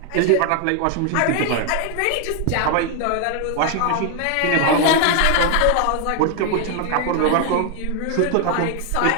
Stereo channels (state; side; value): different; both; correlation 0.00